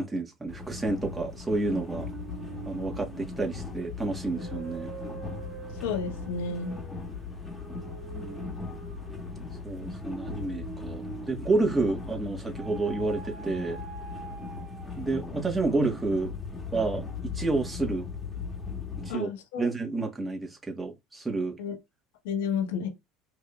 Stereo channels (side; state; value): both; normal; correlation 0.65